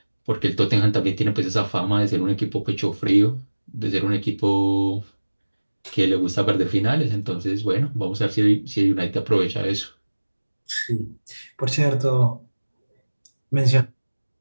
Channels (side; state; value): both; inverted; correlation -1.00